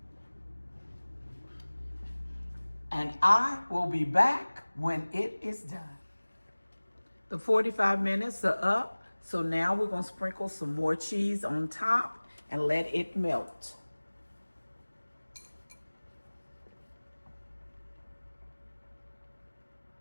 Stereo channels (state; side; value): inverted; both; correlation -1.00